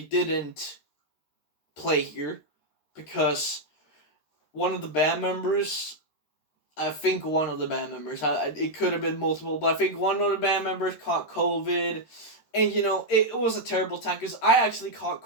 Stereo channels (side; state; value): right; late; 13 ms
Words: play here because one of the band members. I think one of the band members. It could have been multiple, but I think one of the band members caught COVID. And, it was a terrible time because I actually caught